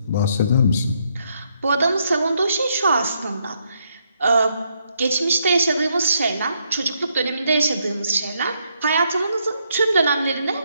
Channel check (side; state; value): both; inverted; correlation -0.75